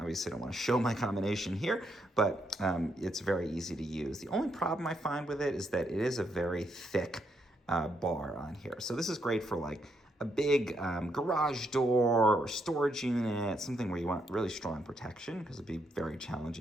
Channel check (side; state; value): both; normal; correlation 0.77